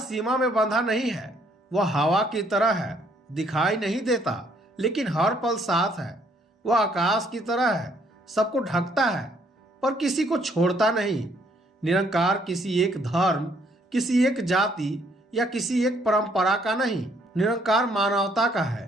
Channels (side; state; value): both; normal; correlation 0.66